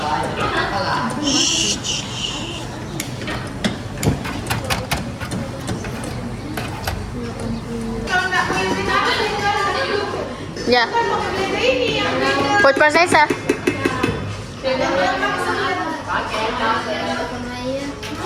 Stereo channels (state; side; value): identical; both; correlation 1.00